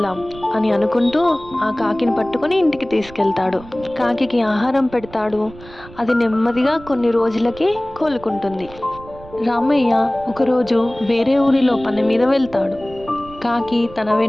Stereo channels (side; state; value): right; noise; rumble, 19 dB below the sound